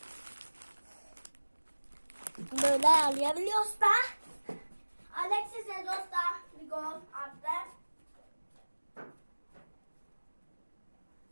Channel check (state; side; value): inverted; both; correlation -1.00